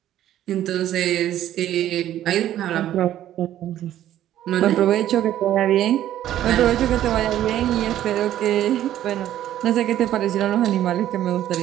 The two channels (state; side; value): quieter; left; 12.3 dB